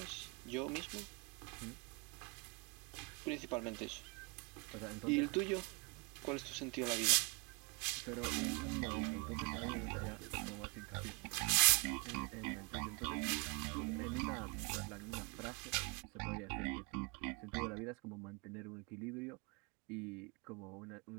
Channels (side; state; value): left; quieter; 32.1 dB